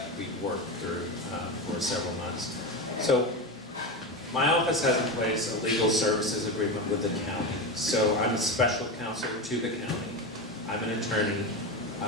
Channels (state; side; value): normal; both; correlation 0.19